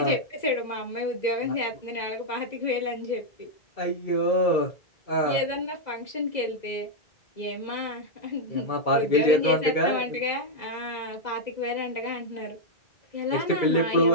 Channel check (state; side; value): late; right; 2.0 ms